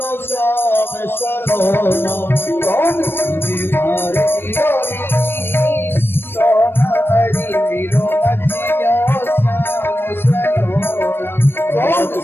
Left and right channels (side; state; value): right; late; 0.10 ms